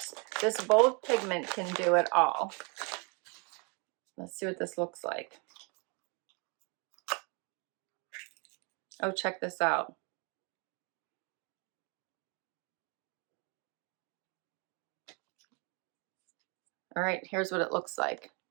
this bold pigment can do it all. Let's see what this looks like. Oh, check this out. All right, here's what it looks like.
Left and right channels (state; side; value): quieter; left; 33.6 dB